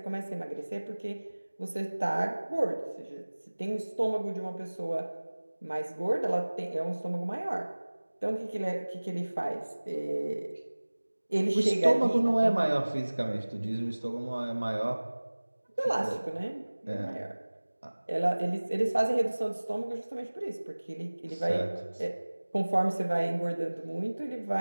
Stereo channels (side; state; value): both; inverted; correlation -1.00